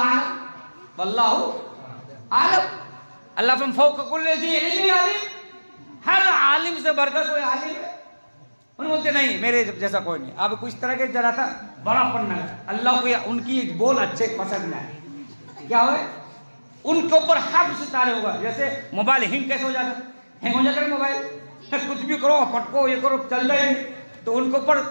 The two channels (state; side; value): inverted; both; correlation -1.00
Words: اعلم، واللہ اعلم، اللہ فم فوق کل ذی علم علیم، ہر عالم سے بڑھ کر کوئی عالم ہے؟ انہوں بولتے نہیں، میرے جیسا کوئی نہیں۔ اب کچھ طرح کے ذرا تھا بڑا پڑھنا ہے، اللہ کو ان کی بول اچھے پسند ہے، کیا ہوئے ان کے اوپر حفظ تارے ہوگا، جیسے موبائل ہینگ کیسے ہو جاتا ہے، ہینگ ہو جاتا ہے موبائل، کچھ بھی کرو پٹکو یہ کرو چل رہا ہی نہیں، تو ان کے اوپر